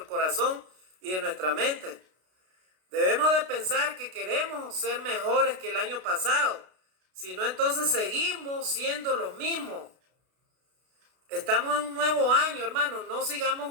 corazón y de nuestra mente. Debemos de pensar que queremos ser mejores que el año pasado. Si no, entonces seguimos siendo los mismos. Estamos en un nuevo año, hermano. No sigamos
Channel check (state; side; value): late; left; 32 ms